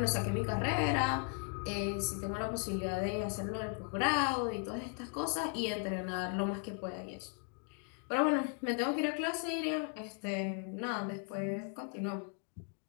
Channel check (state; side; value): quieter; right; 37.9 dB